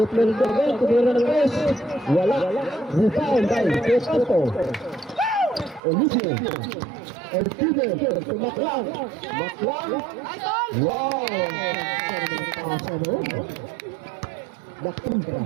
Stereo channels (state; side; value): drops out; left; at 5.8 s